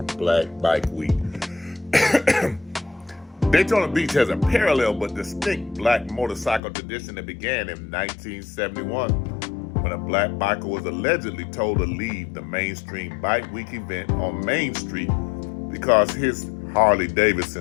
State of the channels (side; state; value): right; drops out; at 6.6 s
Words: Black Bike Week. Daytona Beach has a parallel but distinct Black motorcycle tradition that began in 1971 when a Black biker was allegedly told to leave the mainstream Bike Week event on Main Street because his Harley